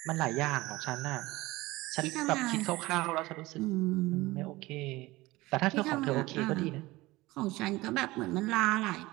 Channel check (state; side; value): quieter; left; 19.9 dB